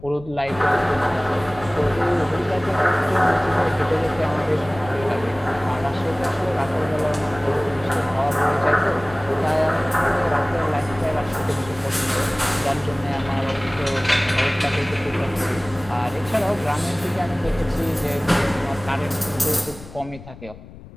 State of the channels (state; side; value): noise; left; rumble, 17 dB below the sound